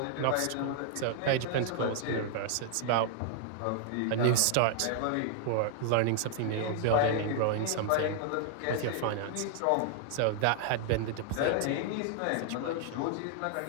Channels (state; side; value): different; both; correlation 0.00